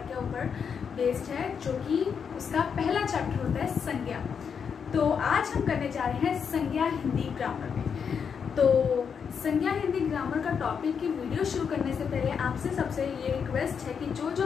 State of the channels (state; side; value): quieter; right; 6.7 dB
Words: के ऊपर बेस्ड है, जो कि उसका पहला चैप्टर होता है संज्ञा। तो आज हम करने जा रहे हैं संज्ञा हिंदी ग्रामर में। तो संज्ञा हिंदी ग्रामर का टॉपिक की वीडियो शुरू करने से पहले आपसे सबसे ये रिक्वेस्ट है कि